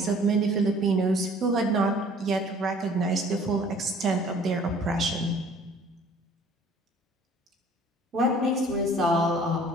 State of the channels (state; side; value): normal; both; correlation 0.53